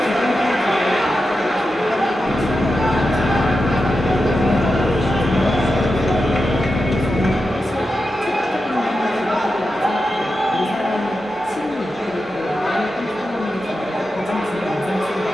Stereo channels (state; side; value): normal; both; correlation 0.90